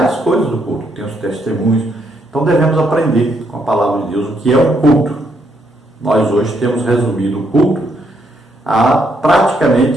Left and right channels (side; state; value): both; normal; correlation 0.75